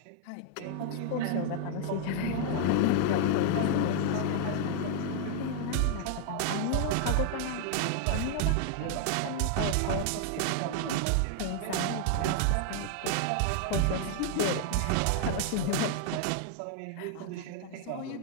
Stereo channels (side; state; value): both; different; correlation 0.00